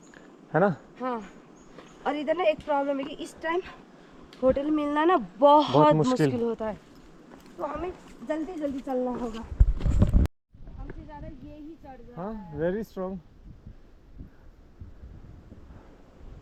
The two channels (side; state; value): both; identical; correlation 1.00